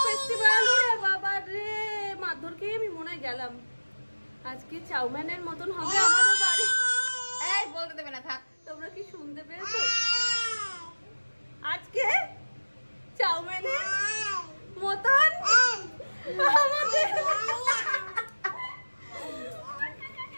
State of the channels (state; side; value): inverted; both; correlation -1.00